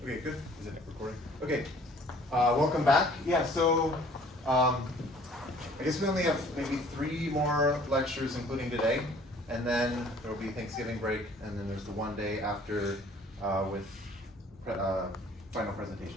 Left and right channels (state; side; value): normal; both; correlation 0.54